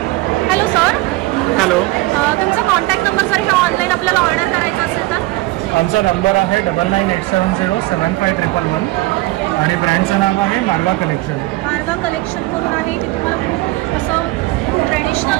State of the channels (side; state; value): left; quieter; 19.9 dB